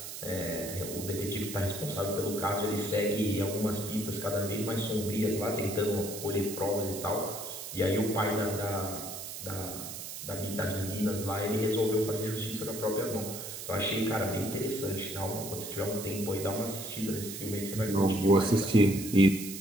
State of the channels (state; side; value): noise; right; hiss, 9 dB below the sound